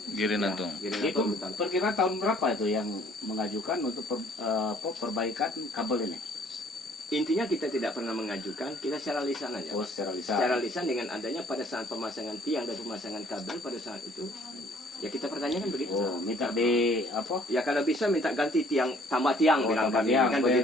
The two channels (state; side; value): normal; both; correlation 0.59